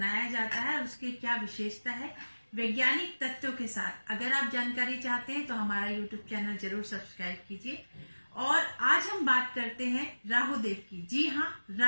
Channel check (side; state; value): both; inverted; correlation -1.00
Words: जाता है, उसकी क्या विशेषता है, वैज्ञानिक तथ्यों के साथ अगर आप जानकारी चाहते हैं तो हमारा YouTube चैनल जरूर सब्सक्राइब कीजिए। और आज हम बात करते हैं राहु देव की। जी हाँ,